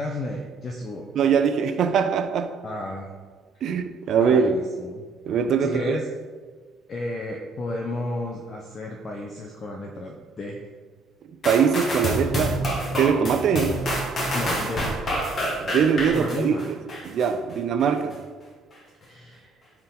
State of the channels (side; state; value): left; quieter; 4.5 dB